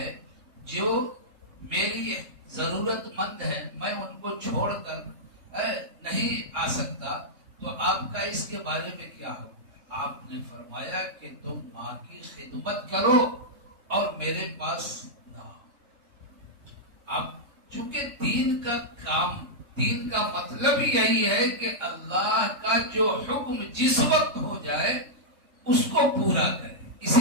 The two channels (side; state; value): left; late; 3.7 ms